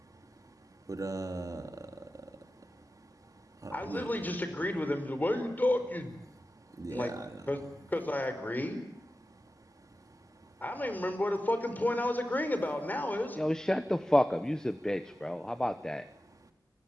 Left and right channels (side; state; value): both; normal; correlation 0.93